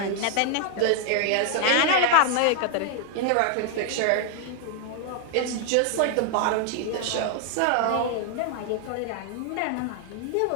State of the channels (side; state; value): both; different; correlation 0.00